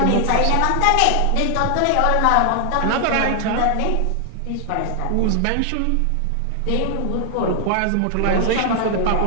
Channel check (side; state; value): both; different; correlation 0.00